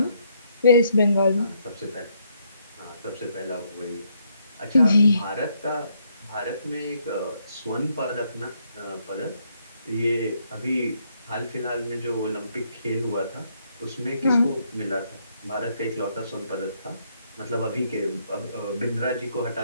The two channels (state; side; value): inverted; both; correlation -0.73